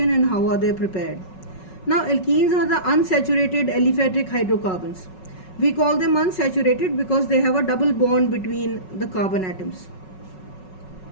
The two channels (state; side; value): late; right; 5.4 ms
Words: and how are they prepared. Now, alkenes are the unsaturated aliphatic hydrocarbons. We call them unsaturated because they have a double bond between the carbon atoms.